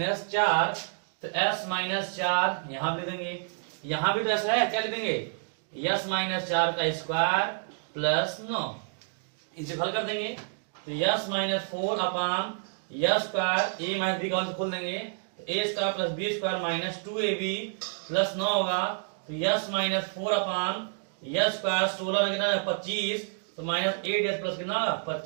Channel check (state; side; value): silent; left; digital silence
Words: 4, तो s माइनस 4 यहां भी देंगे, यहां भी तो s है, क्या लिख देंगे s माइनस 4 का स्क्वायर प्लस 9, इसे हल कर देंगे तो s minus 4 upon s square a minus b का खोल देंगे तो a square plus b square minus 2ab plus 9 होगा, तो s माइनस 4 अपान यस स्क्वायर 16 कितना है 25, तो माइनस 8s प्लस कितना